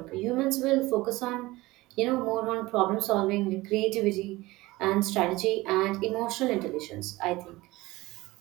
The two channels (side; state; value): left; quieter; 19.8 dB